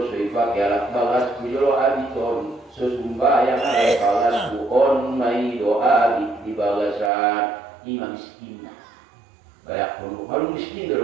soy pakai alat balas di jolo abiton. Sesumbayang alat balasku on mai doa di balasan imam miskin. Kayak kalau miskin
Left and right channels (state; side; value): drops out; left; at 7.1 s